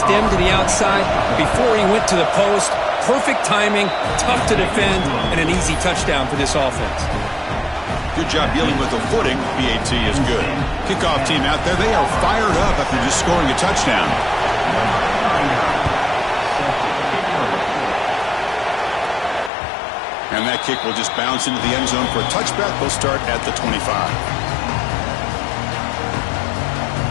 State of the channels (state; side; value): drops out; right; at 19.5 s